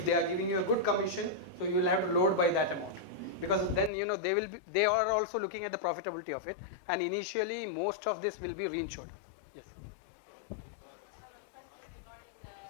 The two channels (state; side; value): drops out; right; at 3.9 s